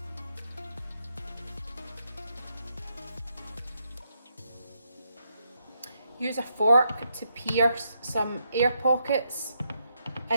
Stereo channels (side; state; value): both; inverted; correlation -0.80